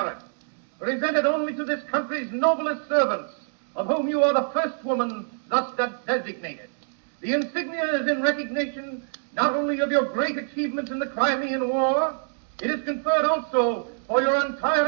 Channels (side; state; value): left; silent; digital silence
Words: presented only to this country's noblest servants, of whom you are the first woman thus designated. The insignia is in recognition not only of your great achievements in the Crimean War, it is conferred also for your